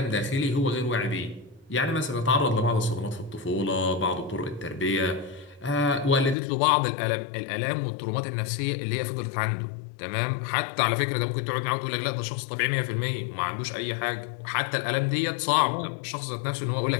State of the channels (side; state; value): right; drops out; at 6.4 s